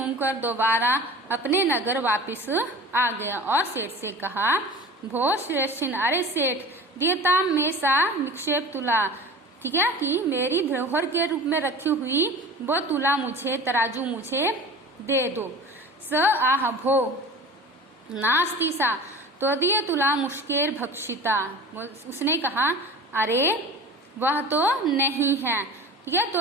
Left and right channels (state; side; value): normal; both; correlation 0.37